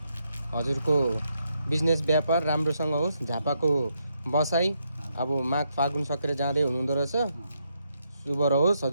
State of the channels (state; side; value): inverted; both; correlation -0.79